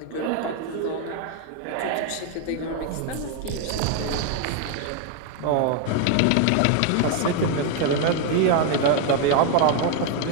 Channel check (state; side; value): different; both; correlation 0.01